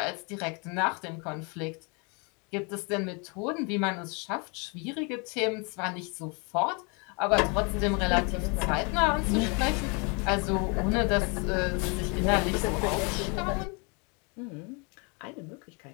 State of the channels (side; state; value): right; quieter; 32.9 dB